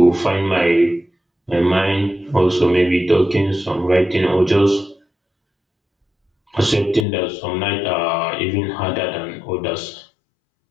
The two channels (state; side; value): drops out; right; at 7.1 s